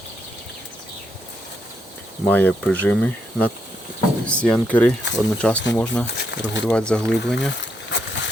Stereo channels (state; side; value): normal; both; correlation 0.79